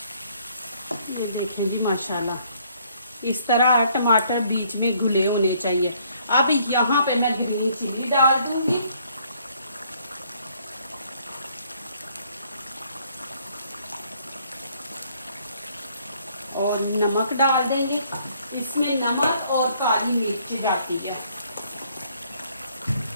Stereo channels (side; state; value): both; inverted; correlation -0.65